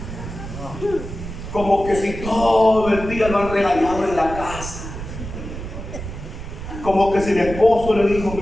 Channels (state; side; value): noise; right; rumble, 9 dB below the sound